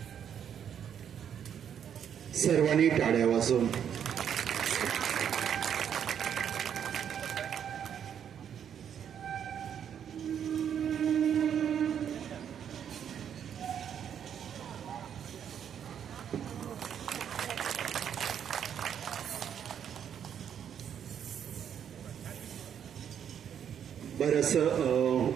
सर्वांनी टाळ्या वाजवून बरंच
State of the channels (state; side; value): quieter; left; 8.7 dB